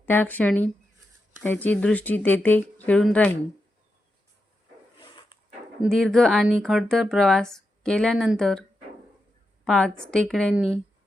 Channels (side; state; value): both; normal; correlation 0.87